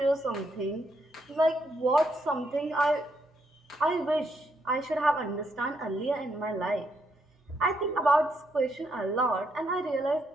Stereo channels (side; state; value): both; normal; correlation 0.77